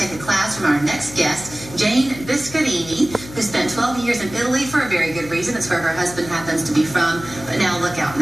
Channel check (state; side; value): noise; left; hum, 15 dB below the sound